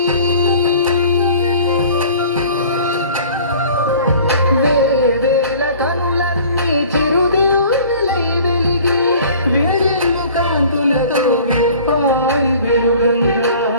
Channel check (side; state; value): both; inverted; correlation -0.48